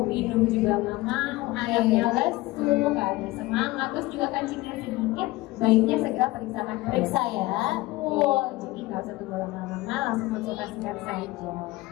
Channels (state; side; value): quieter; right; 19.3 dB